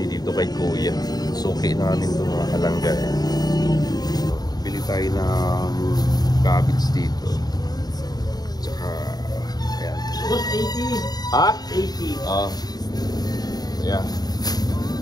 dito kay Kuya. Suki namin ito mga kalangga. Bili tayo ng cabbage dito. Tsaka ayan. 80. Ha? 80. Yeah.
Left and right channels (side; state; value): right; late; 0.19 ms